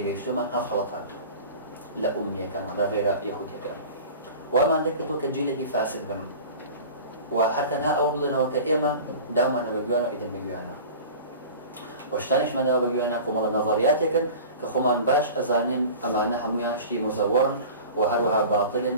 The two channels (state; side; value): inverted; both; correlation -0.39